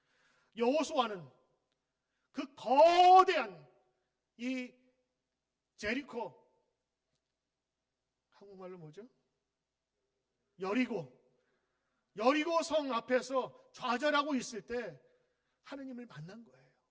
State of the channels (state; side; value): identical; both; correlation 1.00